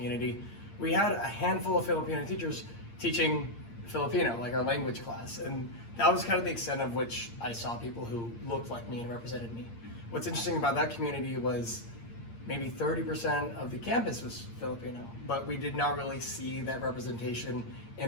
We had a handful of Filipino teachers teaching Filipino, like our language class, and that was kind of the extent of which I saw people who looked like me and represented me. What's interesting about that community was maybe 30% of the campus was Filipino, but we did not really see that representation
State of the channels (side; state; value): right; late; 8.7 ms